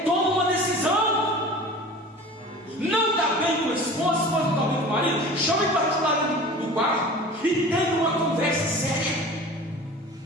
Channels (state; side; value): normal; both; correlation 0.39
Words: Toma uma decisão. Não está bem com a esposa, a esposa não está bem com o marido, chame para o lado do quarto e tenha uma conversa séria.